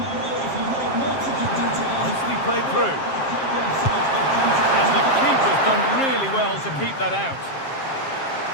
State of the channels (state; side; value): late; right; 7.5 ms